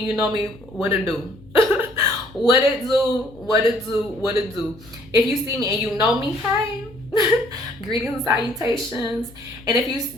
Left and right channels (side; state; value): left; noise; hum, 23 dB below the sound